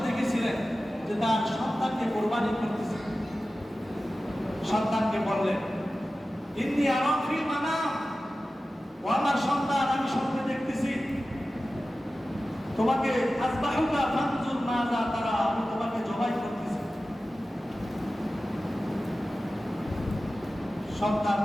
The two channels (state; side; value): normal; both; correlation 0.95